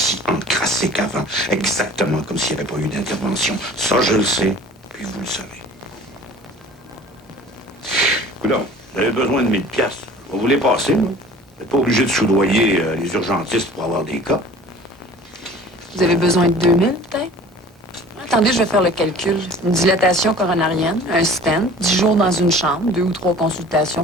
encrassé qu'avant. Exactement comme s'il n'y avait pas eu d'intervention. Ça, je le sais, puis vous le savez. Coudonc, vous avez besoin de 1000 piastres. On va vous les passer, là. Vous n'êtes pas obligé de soudoyer les urgentistes pour avoir des cas. Vous avez besoin de 2000, peut-être? Attendez, je vais faire le calcul. Une dilatation coronarienne, un stent, 10 jours dans une chambre, 2 ou 3 consultations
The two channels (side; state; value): both; normal; correlation 0.46